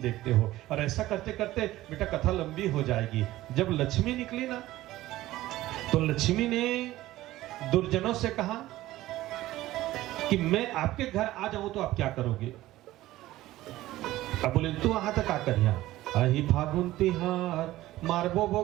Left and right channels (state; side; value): quieter; left; 16.1 dB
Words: हो। और ऐसा करते करते बेटा कथा लंबी हो जाएगी। जब लक्ष्मी निकली ना, तो लक्ष्मी ने दुर्जनों से कहा कि मैं आपके घर आ जाऊं तो आप क्या करोगे? अब बोले तू वहां तक आ कर यहाँ अहि फागुन तिहार मारबो